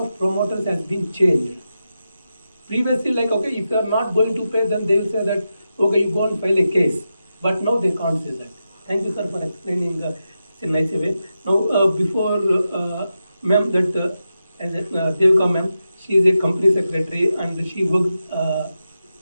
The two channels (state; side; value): inverted; both; correlation -0.89